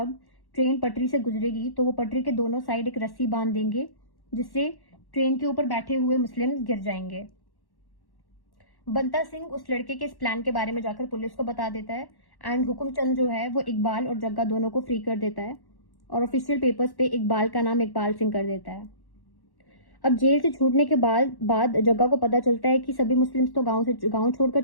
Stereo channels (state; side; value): late; right; 1.1 ms